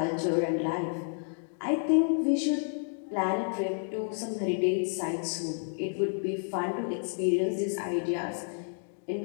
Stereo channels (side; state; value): right; silent; 58 dB below the other